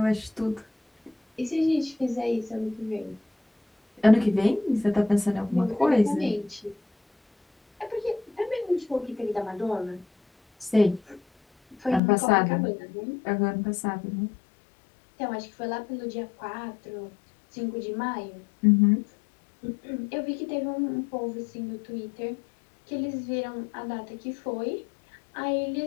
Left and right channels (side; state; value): right; drops out; at 12.0 s